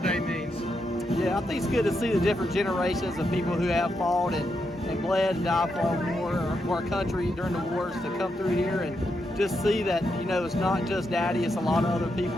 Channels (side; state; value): both; normal; correlation 0.82